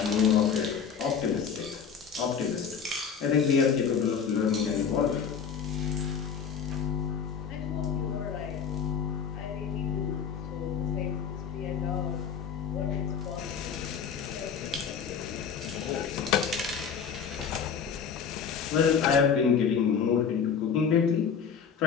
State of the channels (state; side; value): quieter; right; 6.8 dB